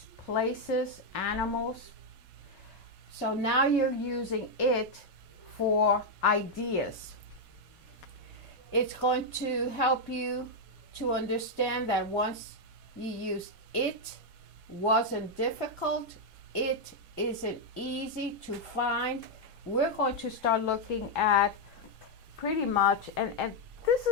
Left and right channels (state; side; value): normal; both; correlation 0.00